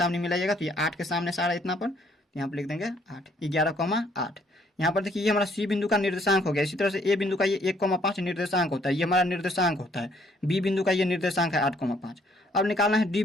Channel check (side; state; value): both; normal; correlation 0.65